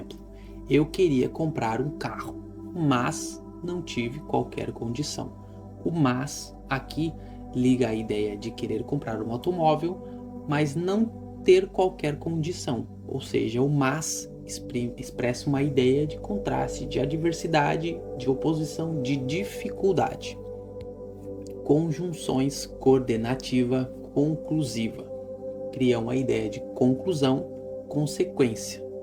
eu queria comprar um carro, mas não tive qualquer condição. O mas aqui liga a ideia de querer comprar um automóvel, mas não ter qualquer condição. Ou seja, o mas expressa uma ideia de contraste, de adversidade, de oposição, de dificuldade. Conjunções coordenativa conclusiva criam uma ideia de conclusão, consequência,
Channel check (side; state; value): both; identical; correlation 1.00